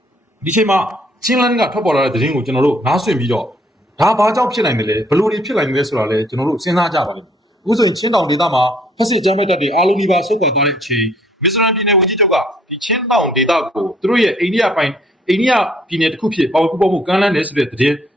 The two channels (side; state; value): both; normal; correlation 0.64